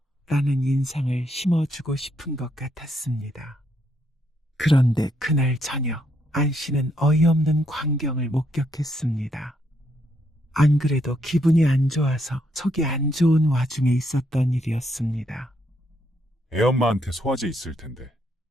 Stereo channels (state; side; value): normal; both; correlation 0.75